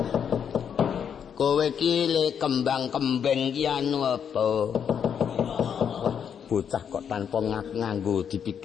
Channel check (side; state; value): right; quieter; 7.9 dB